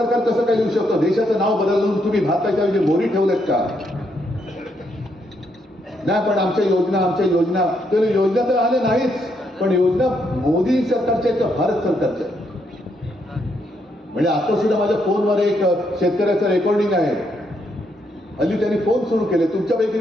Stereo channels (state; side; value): normal; both; correlation 0.76